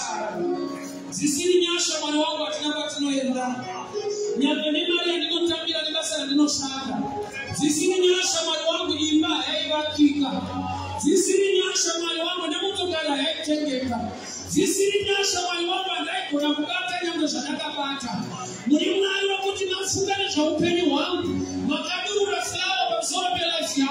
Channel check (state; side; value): identical; both; correlation 1.00